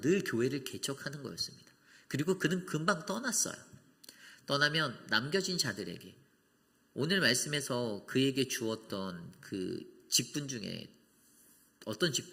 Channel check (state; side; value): identical; both; correlation 1.00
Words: 늘 교회를 개척하는 거였습니다. 그리고 그는 금방 떠났어요. 떠나면 남겨진 자들에게, 오늘 말씀에서 그에게 주었던 그 직분 중에 어떤